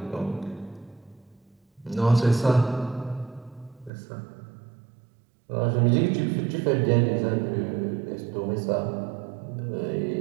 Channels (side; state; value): left; drops out; at 3.9 s